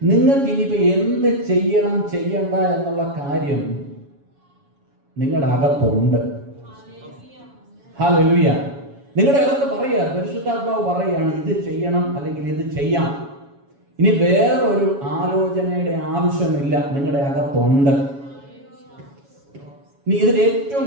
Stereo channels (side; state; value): left; late; 7.2 ms